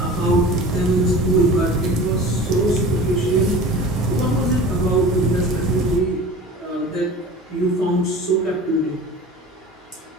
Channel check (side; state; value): both; normal; correlation 0.39